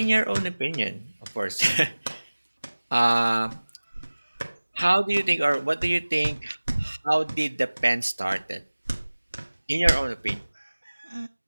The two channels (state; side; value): inverted; both; correlation -1.00